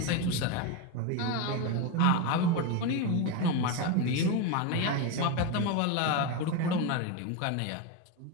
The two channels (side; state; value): both; different; correlation 0.04